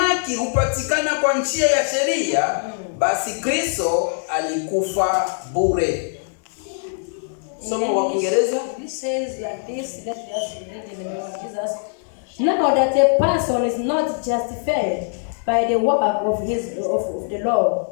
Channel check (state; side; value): silent; right; digital silence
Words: hupatikana kwa njia ya sheria, basi Kristo alikufa bure. Somo wa Kiingereza. This says like this. Let us read in the name of Jesus. Now that a person is not justified by the work of the law,